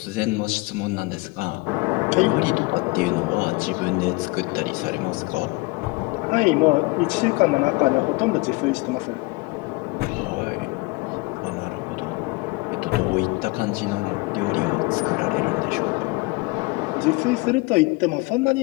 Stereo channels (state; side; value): quieter; right; 25.3 dB